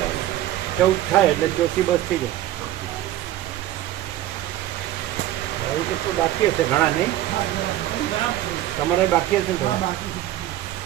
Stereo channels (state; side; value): quieter; left; 13.6 dB